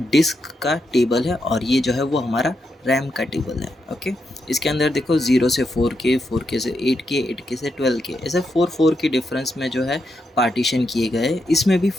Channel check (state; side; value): normal; both; correlation 0.83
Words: डिस्क का टेबल है और ये जो है वो हमारा रैम का टेबल है। ओके, इसके अंदर देखो 0 से 4K, 4K से 8K, 8K से 12K, ऐसे 4 के डिफरेंस में जो है पार्टीशन किए गए। इसमें भी